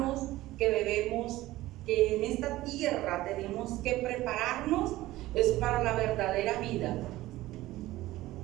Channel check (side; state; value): left; quieter; 16.9 dB